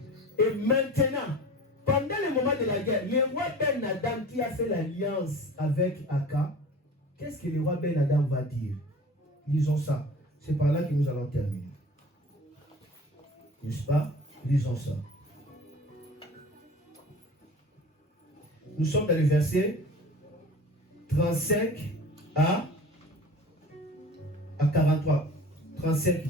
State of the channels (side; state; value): both; normal; correlation 0.40